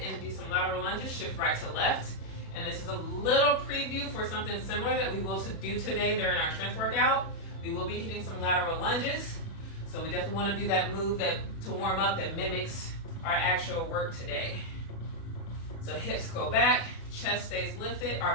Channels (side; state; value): right; late; 36 ms